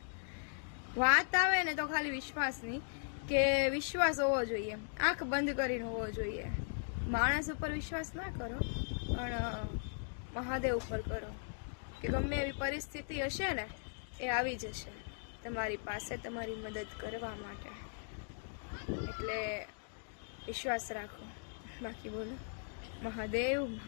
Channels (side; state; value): right; silent; digital silence